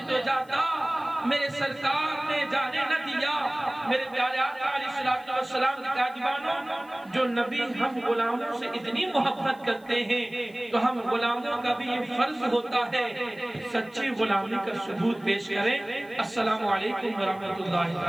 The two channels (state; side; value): noise; left; hiss, 28 dB below the sound